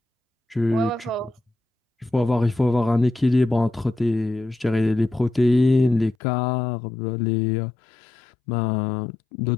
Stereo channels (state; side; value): drops out; right; at 6.2 s